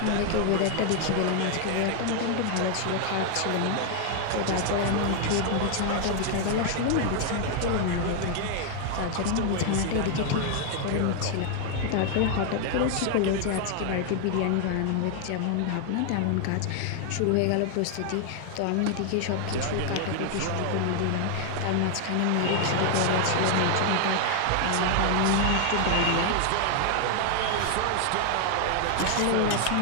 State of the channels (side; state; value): both; different; correlation 0.00